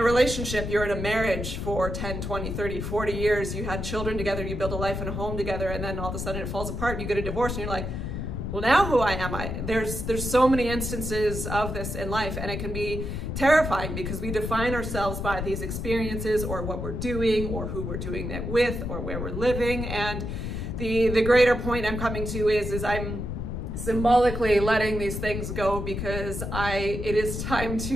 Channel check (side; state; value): left; noise; rumble, 4 dB below the sound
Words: relationship, you're in a marriage for 10, 20, 30, 40 years, you had children together, you build a life and a home together, and then all of a sudden it falls apart and you get a divorce, and you're like, well, now who am I? There's so many instances of this in life, and it can be terrifying because we define ourselves by these experiences, or what we're doing, or who we're doing that with, or where we're living. And the greater point I'm coming to is I'm symbolically letting these things go, because it is time